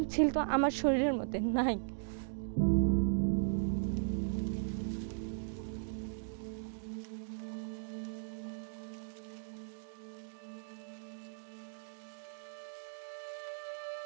ছিল তো আমার শরীরের মধ্যে নাই।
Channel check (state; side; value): silent; left; digital silence